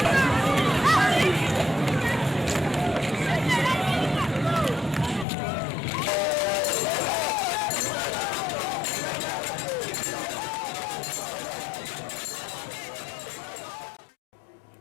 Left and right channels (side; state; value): right; drops out; at 5.2 s